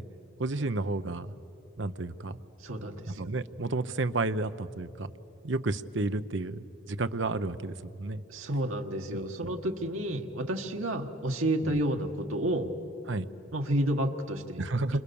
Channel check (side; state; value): both; normal; correlation 0.49